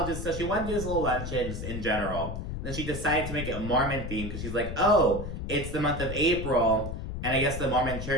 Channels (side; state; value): left; noise; rumble, 6 dB below the sound